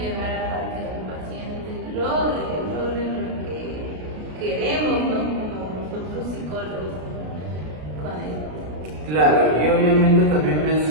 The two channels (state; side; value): late; left; 33 ms